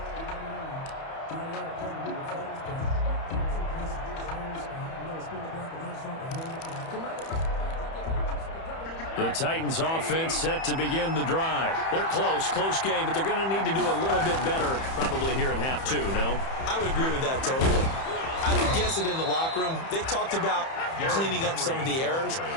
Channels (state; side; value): late; right; 30 ms